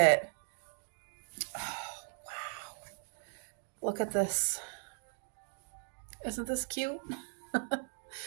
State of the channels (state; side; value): silent; left; digital silence